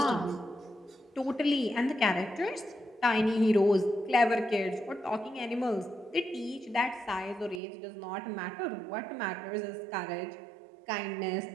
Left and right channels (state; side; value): drops out; left; at 7.6 s